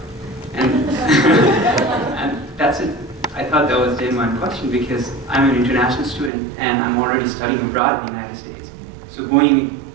And, and that's it. I thought that was a genuine question because I'm an international student and I'm already studying abroad in the United States. So going,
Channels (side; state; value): left; drops out; at 6.3 s